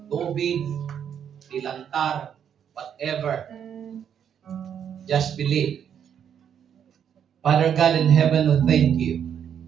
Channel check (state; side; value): quieter; left; 8.5 dB